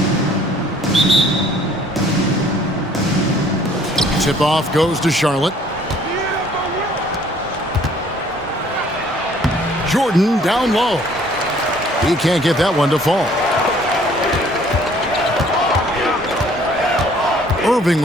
Tip-off goes to Charlotte. Jordan down low. He can't get that one to fall. Irving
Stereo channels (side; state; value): both; normal; correlation 0.58